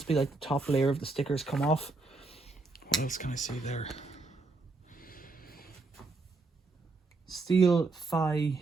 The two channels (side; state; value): left; quieter; 3.6 dB